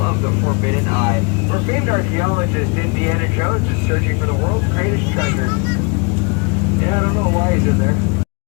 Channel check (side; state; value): right; quieter; 30.5 dB